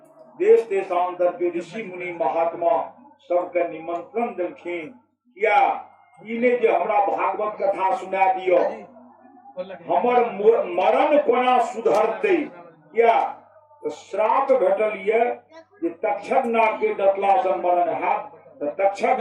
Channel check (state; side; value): identical; both; correlation 1.00